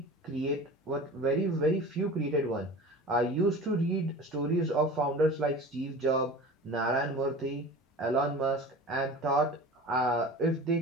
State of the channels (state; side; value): normal; both; correlation 0.37